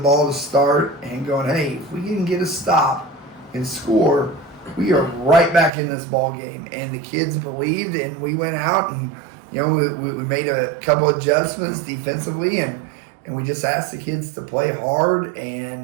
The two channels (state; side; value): drops out; left; at 5.7 s